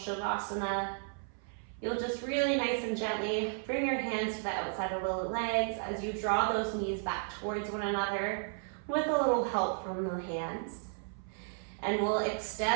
you'll just really nice and gently bring your hands to the outside of the legs as you draw those knees back towards one another with a little help from the hands. And we'll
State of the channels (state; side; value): silent; left; 55 dB below the other